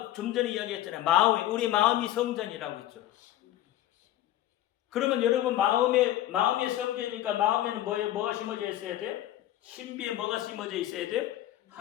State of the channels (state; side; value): quieter; right; 13.6 dB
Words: 좀 전에 이야기했잖아요. 우리 마음이 성전이라고 했죠. 그러면 여러분 마음의 성전이니까 마음에는 뭐가 심어져 있어야 돼요? 신비에 뭐가 심어져 있어야 돼요?